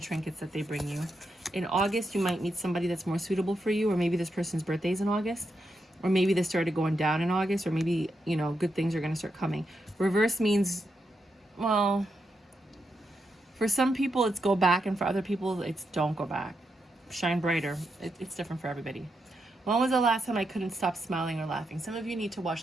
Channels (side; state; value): both; normal; correlation 0.84